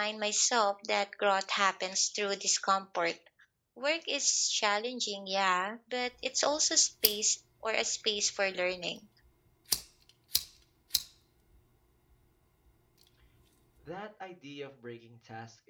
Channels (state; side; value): identical; both; correlation 1.00